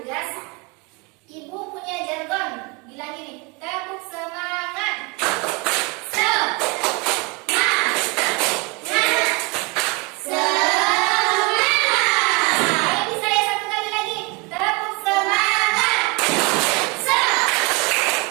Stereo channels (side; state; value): left; quieter; 27.4 dB